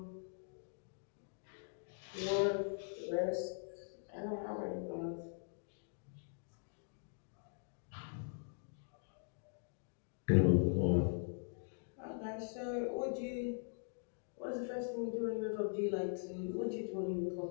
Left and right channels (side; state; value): right; silent; digital silence